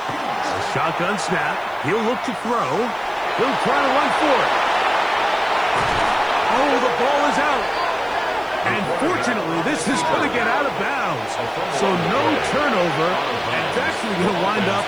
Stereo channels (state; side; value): noise; left; hiss, 28 dB below the sound